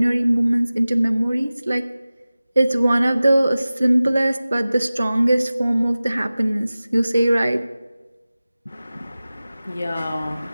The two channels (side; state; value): both; inverted; correlation -0.97